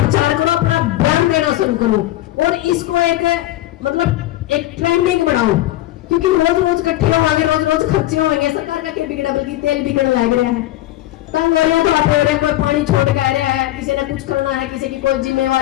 करो, अपना बयान देना शुरू करो, और इसको एक मतलब एक ट्रेंडिंग रोज रोज इकट्ठे होंगे, रोज रोज खर्चे होंगे, सरकार का क्या बिगड़ा, बल्कि तेल बिगड़ लग रहा है। तंग हो रहे हैं तो आप हो रहे हैं, कोई पानी छोड़ के आ रहा है, किसी ने कुछ करना है, किसी की कोई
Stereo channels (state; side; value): quieter; right; 15.7 dB